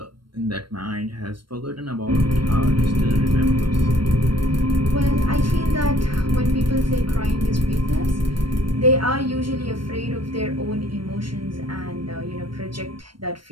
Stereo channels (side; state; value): left; late; 0.72 ms